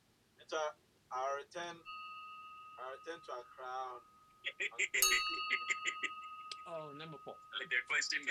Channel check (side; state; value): both; identical; correlation 1.00